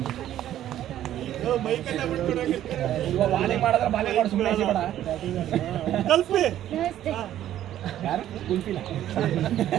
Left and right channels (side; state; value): left; quieter; 12.1 dB